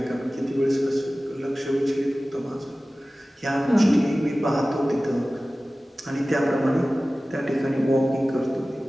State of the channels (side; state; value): both; normal; correlation 0.97